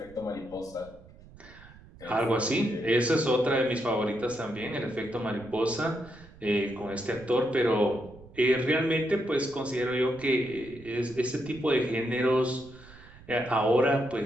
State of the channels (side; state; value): right; noise; rumble, 21 dB below the sound